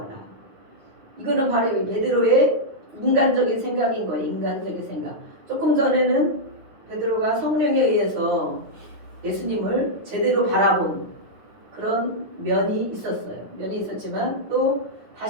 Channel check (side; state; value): left; late; 9.7 ms